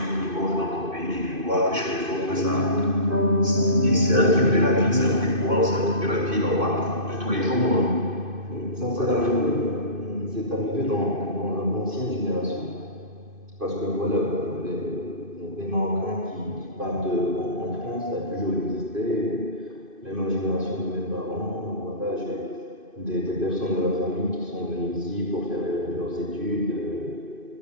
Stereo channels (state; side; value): late; left; 2.5 ms